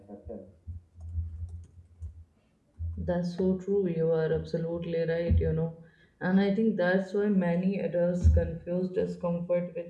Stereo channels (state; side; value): identical; both; correlation 1.00